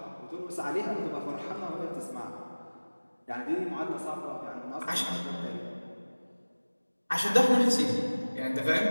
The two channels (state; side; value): inverted; both; correlation -1.00